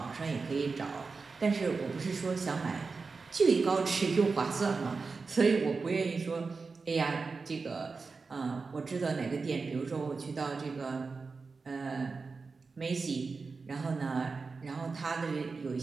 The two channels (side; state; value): left; quieter; 4.4 dB